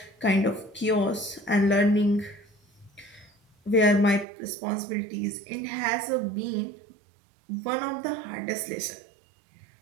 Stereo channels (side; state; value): left; drops out; at 4.2 s